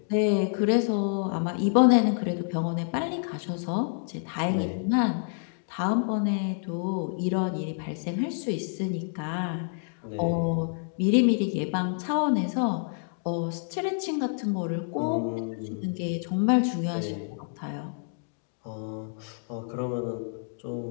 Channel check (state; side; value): silent; right; digital silence